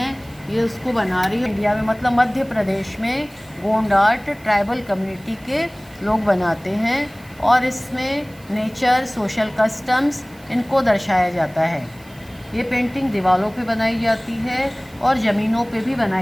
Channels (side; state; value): right; noise; hiss, 26 dB below the sound